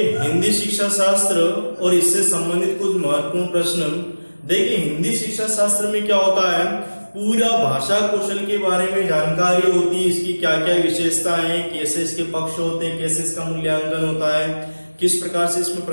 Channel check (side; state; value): both; inverted; correlation -1.00